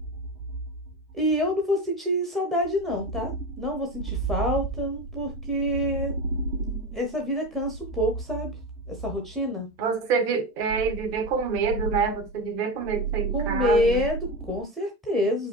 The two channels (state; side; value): normal; both; correlation 0.20